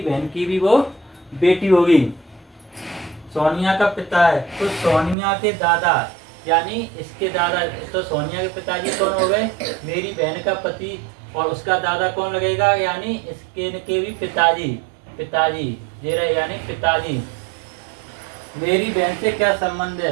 बहन की भी वो बेटी होगी। सोनिया का पिता है तो सोनिया के दादा, यानी इसके दादा। तो सोनिया के पिताजी कौन हो गए? मेरी बहन का पति। और उसका दादा कौन लगेगा? यानी इसके के भी पिताजी। पिताजी ये रहे, यानी पिताजी। मेरी बहन से क्या संबंध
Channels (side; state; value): left; drops out; at 5.2 s